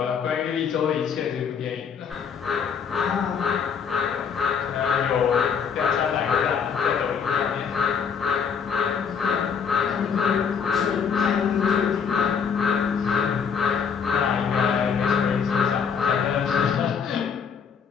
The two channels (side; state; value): right; quieter; 6.7 dB